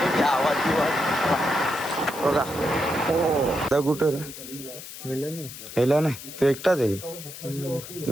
घ्या आवाज बिवाज बघा. हो कुठं हेला नाही तो एकटाच आहे.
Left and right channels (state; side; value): noise; left; hiss, 13 dB below the sound